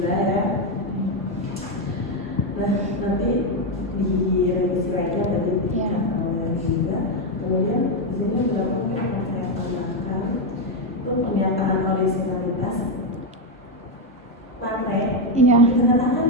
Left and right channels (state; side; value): normal; both; correlation 0.05